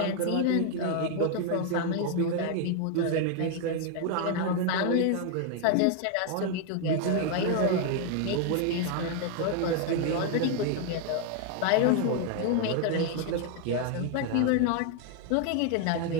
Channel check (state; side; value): different; both; correlation 0.00